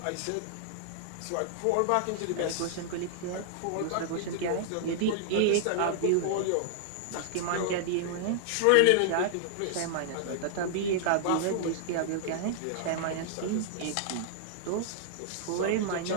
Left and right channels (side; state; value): both; different; correlation -0.01